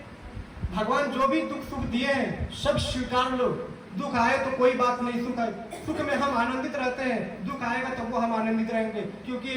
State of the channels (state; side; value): identical; both; correlation 1.00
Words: भगवान जो भी दुख सुख दिए हैं सब स्वीकार लो। दुख आए तो कोई बात नहीं, सुख आए, सुख में हम आनंदित रहते हैं, दुख आएगा तब वो हम आनंदित रहेंगे, क्योंकि